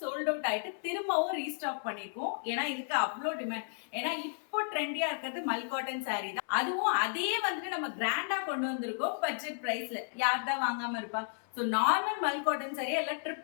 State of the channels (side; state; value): right; silent; 56 dB below the other